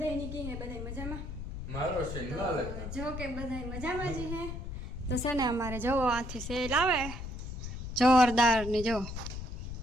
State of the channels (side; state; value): left; noise; rumble, 7 dB below the sound